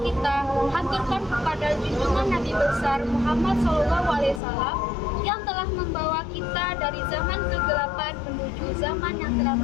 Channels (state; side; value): drops out; right; at 4.4 s